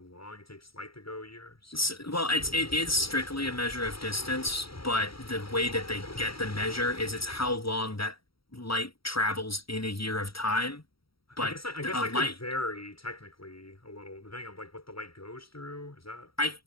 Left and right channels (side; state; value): right; late; 0.75 ms